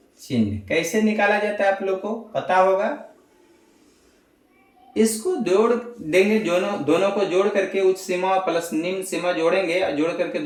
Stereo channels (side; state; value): both; identical; correlation 1.00